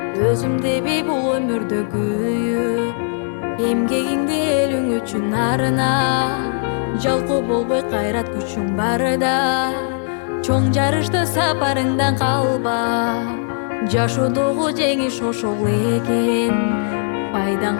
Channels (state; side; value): silent; right; digital silence